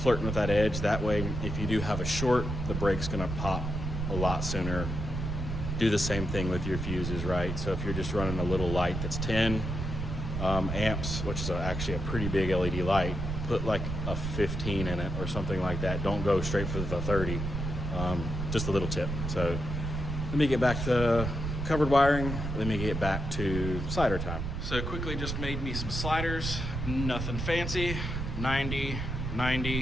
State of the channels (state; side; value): noise; right; rumble, 3 dB below the sound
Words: flirting with that edge. That way, if you do have a short, the brake's gonna pop a lot sooner. Do the same thing with your fuses, right? So if you're just running a little light that's 10 amps, which is actually a pretty big LED light, put like a 15 in it or something like that. Don't go straight for the 30. Just a little tip. So let me get back to covered wiring. Let me get back to slider time. So quickly just made me some sliders, nothing fancy. 90,